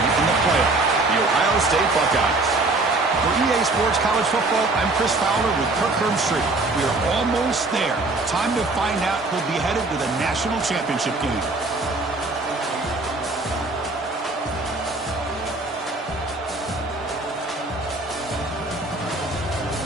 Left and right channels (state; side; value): quieter; left; 3.2 dB